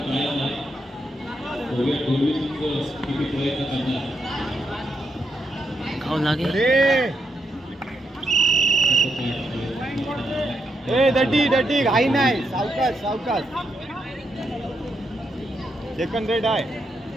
आहे. बघूया पूर्वी संघ किती प्रयत्न करणार. खाऊ लागेल ए दड्डी घाई नाही सावकाश सेकंड रेड आहे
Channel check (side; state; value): both; normal; correlation 0.80